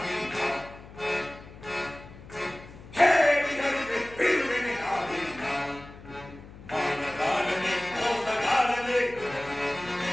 ಹೇ ಹರಿದೆ ಬಿಡುವೆನೆ ನಾನಿಂದ. ಮಾನಗಾರನೆ ಮೋಸಗಾರನೆ,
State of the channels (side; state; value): left; noise; hum, 17 dB below the sound